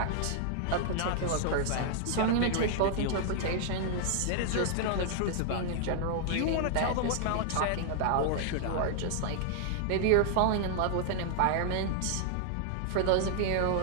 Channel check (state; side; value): different; both; correlation -0.01